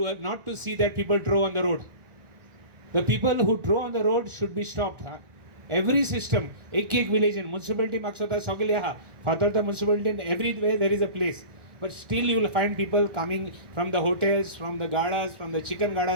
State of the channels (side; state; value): left; late; 1.4 ms